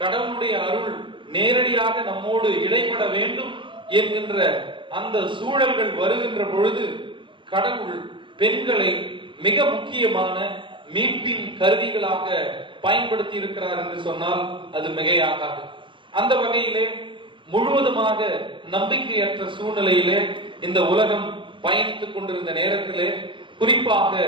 கடவுளுடைய அருள் நேரடியாக நம்மோடு இடைப்பட வேண்டும் என்கின்ற அந்த சூழல்கள் வருகின்ற பொழுது கடவுள் பெண்களை மிக முக்கியமான மீட்பின் கருவிகளாக பயன்படுத்தி இருக்கிறார் என்று சொன்னால் அது மிகையாகாது. அந்த வகையிலே முழுவதுமாக நம்பிக்கையற்ற சூழ்நிலையிலே இந்த உலகம் பயணித்துக் கொண்டிருந்த நேரத்திலே, குறிப்பாக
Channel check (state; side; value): late; left; 0.24 ms